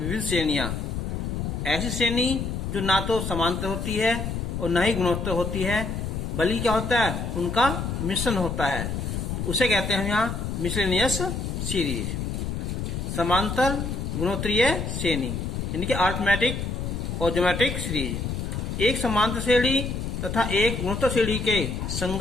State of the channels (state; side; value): noise; left; rumble, 3 dB below the sound